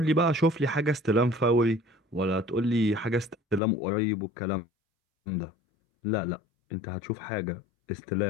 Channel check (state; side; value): drops out; right; at 3.6 s